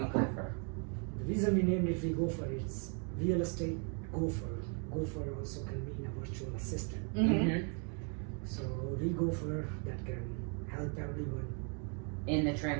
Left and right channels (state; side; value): quieter; left; 39.2 dB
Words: The reason we named it VGopher is real estate Gopher. Gopher also can mean a virtual assistant. Mm-hmm. So ReGopher that can help everyone In the